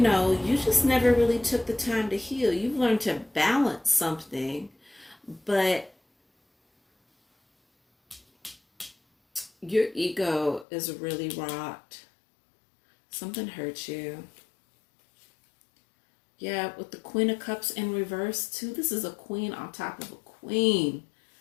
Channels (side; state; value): right; drops out; at 10.7 s